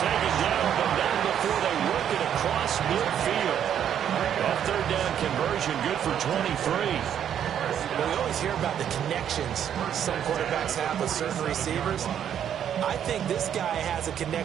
down, but not before they work it across midfield. That 3rd down conversion good for 23. Well, we always hear about the connections some quarterbacks have with certain receivers. I think this guy has a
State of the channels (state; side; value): quieter; left; 9.4 dB